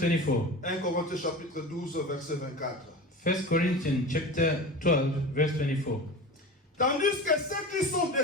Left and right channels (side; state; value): both; normal; correlation 0.32